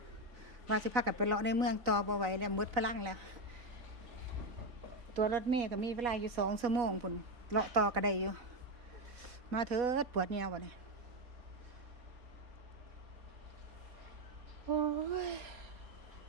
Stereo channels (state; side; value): late; left; 3.9 ms